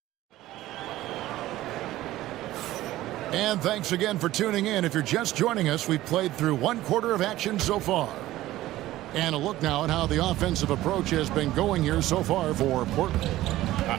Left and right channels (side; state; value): left; quieter; 15.6 dB